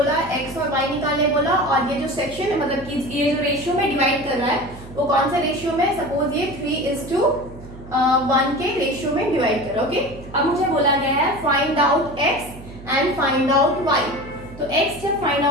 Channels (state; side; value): noise; right; hum, 16 dB below the sound